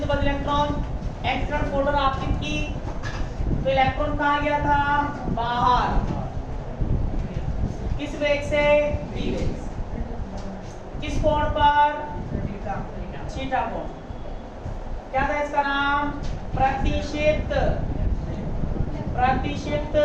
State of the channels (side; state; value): both; identical; correlation 1.00